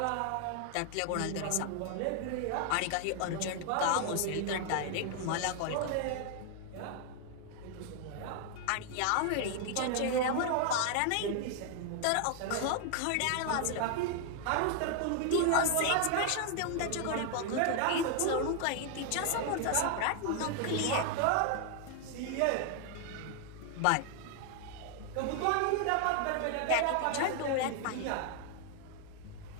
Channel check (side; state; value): both; different; correlation 0.00